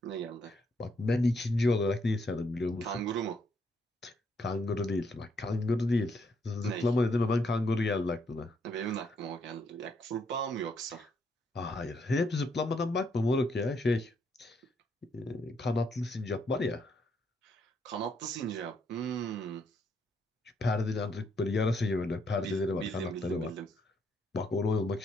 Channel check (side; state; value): both; normal; correlation 0.74